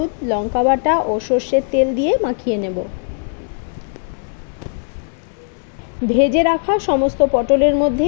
লঙ্কা বাটা ও সর্ষের তেল দিয়ে মাখিয়ে নেব। ভেজে রাখা সমস্ত পটলের মধ্যে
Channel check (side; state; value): right; silent; digital silence